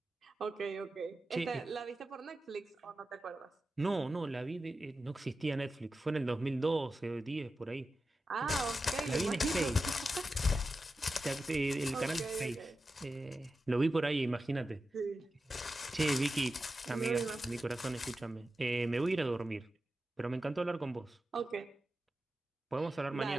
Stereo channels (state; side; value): normal; both; correlation 0.92